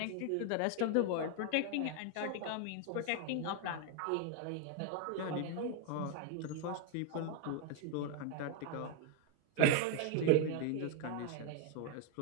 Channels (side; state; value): both; different; correlation 0.01